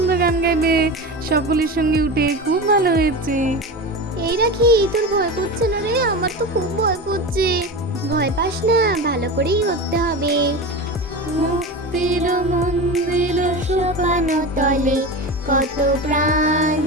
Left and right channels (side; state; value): both; normal; correlation 0.26